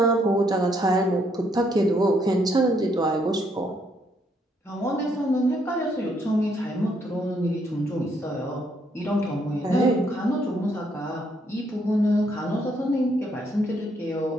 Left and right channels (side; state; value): both; normal; correlation 0.72